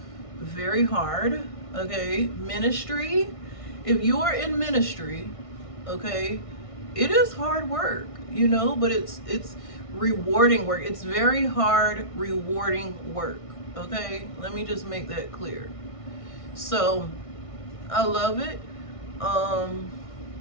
very hard. Okay, ministry, if you are in ministry, okay, it is hard work, you know, but it's rewarding work. It's very hard, rewarding work, okay? Let me just make that clear. So I love it.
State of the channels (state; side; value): late; right; 1.6 ms